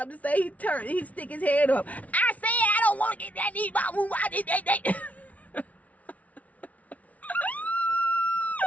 to say, he stick his head up. I said I don't want to get that knee ball move. I did that.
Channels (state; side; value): late; right; 0.069 ms